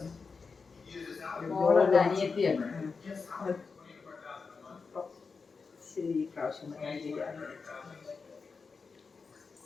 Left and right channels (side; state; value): right; quieter; 4.9 dB